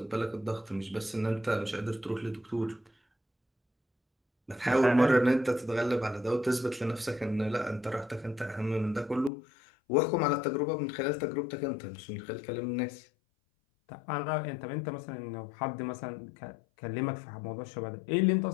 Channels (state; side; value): drops out; right; at 9.3 s